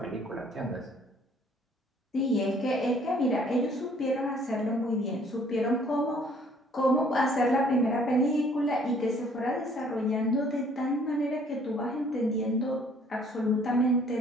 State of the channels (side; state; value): both; normal; correlation 0.59